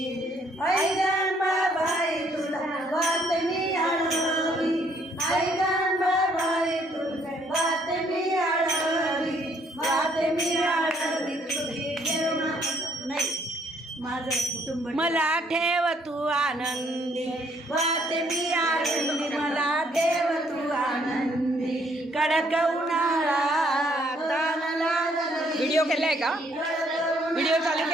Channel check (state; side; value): normal; both; correlation 0.66